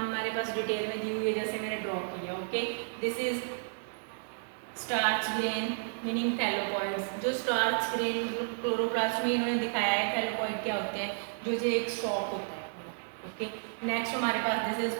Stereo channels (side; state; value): left; silent; digital silence